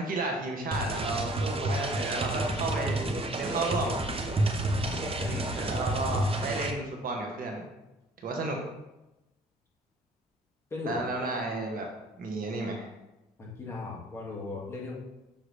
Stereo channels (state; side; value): normal; both; correlation 0.53